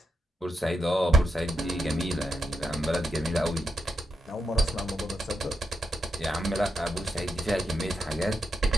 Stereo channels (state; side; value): normal; both; correlation 0.84